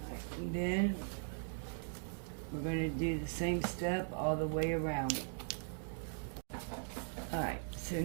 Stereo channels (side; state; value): left; silent; digital silence